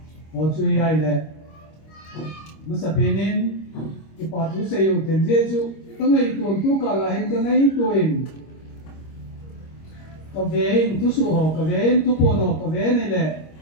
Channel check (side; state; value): right; late; 25 ms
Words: o chui ay le masapinin ipatu sa iyo ten jesu tangay tuon tu kalahin tangay tuin kavein tu suho kavein tu pono kavein ile